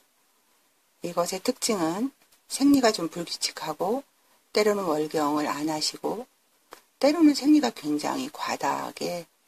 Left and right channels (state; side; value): identical; both; correlation 1.00